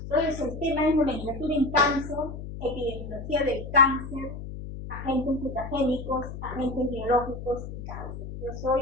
Entonces el tema es nomenclatura en cáncer, epidemiología del cáncer, agentes mutagénicos, agentes biológicos y cáncer. Yo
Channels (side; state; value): left; noise; hum, 9 dB below the sound